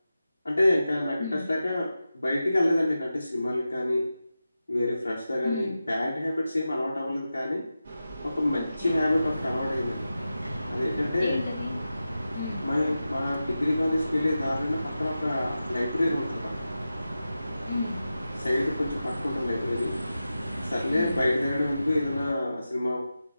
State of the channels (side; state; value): both; inverted; correlation -0.93